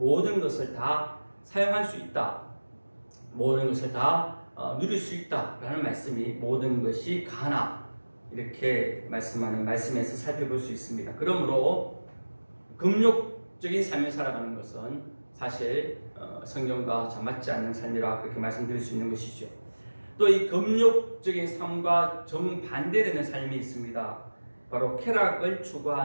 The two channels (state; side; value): inverted; both; correlation -1.00